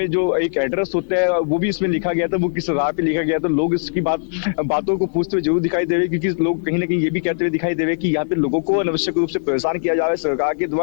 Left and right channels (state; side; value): silent; right; 66 dB below the other